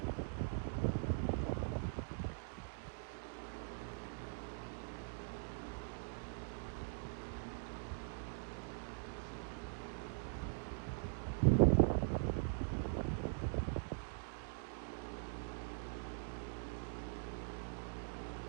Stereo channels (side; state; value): left; silent; digital silence